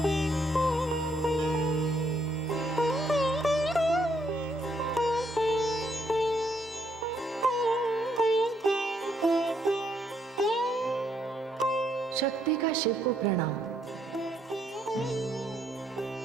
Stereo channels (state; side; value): normal; both; correlation 0.73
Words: शक्ति का शिव को प्रणाम।